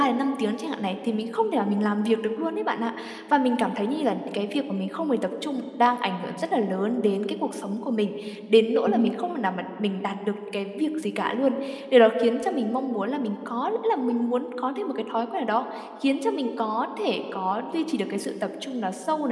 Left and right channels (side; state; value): both; identical; correlation 1.00